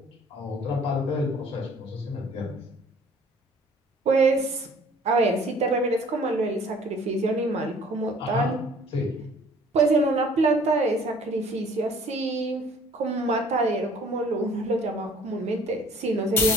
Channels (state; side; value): normal; both; correlation 0.54